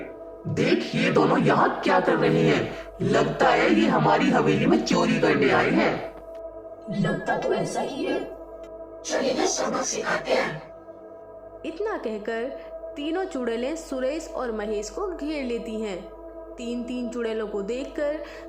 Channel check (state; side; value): identical; both; correlation 1.00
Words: देख, ये दोनों यहाँ क्या कर रहे हैं? लगता है ये हमारी हवेली में चोरी करने आए हैं। लगता तो ऐसा ही है। चलिए ना सबक सिखाते हैं। इतना कहकर तीनों चुड़ैलें सुरेश और महेश को घेर लेती हैं। 3 चुड़ैलों को देखकर